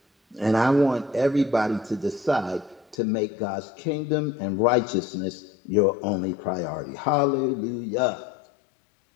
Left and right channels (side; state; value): right; drops out; at 3.0 s